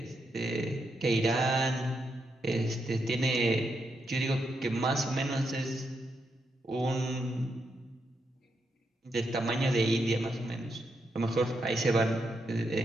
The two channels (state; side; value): normal; both; correlation 0.82